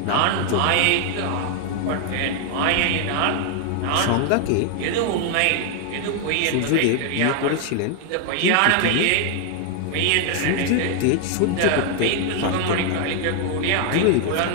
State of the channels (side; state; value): both; different; correlation 0.00